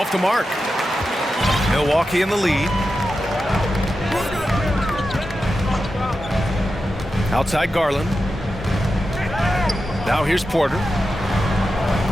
the mark. Milwaukee in the lead. Outside Garland. Now here's Porter.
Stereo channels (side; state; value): both; normal; correlation 0.90